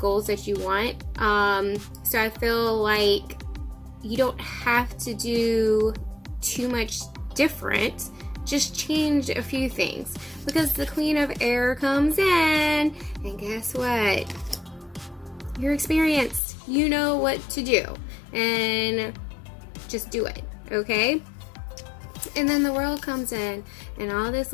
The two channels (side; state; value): right; drops out; at 16.4 s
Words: that you want. So I feel like you don't have to do too much different. Just change a few things, because the Queen of Air comes in, and guess what? You're experienced. You know what to do, and just do it, okay? And then the World comes in, and all this